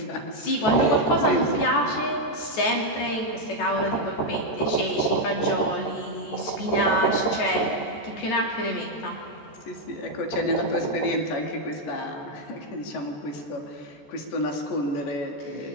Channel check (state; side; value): late; right; 14 ms